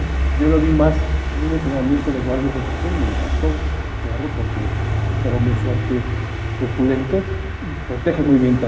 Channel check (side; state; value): both; identical; correlation 1.00